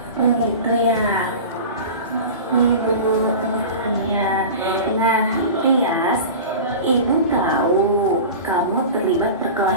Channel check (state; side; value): inverted; both; correlation -0.33